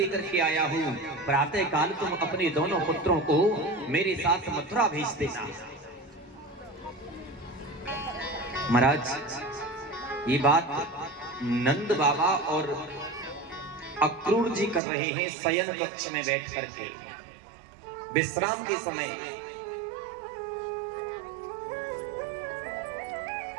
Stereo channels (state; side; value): drops out; left; at 14.8 s